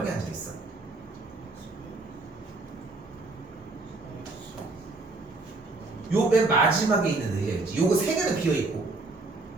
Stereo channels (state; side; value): quieter; left; 3.3 dB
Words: 앉아있어? 요 맨 마지막에 있는 의자였지. 요거 3개는 비어있고.